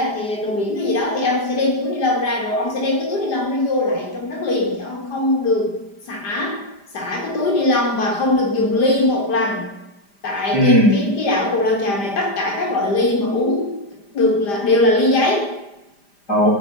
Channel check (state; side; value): late; right; 5.0 ms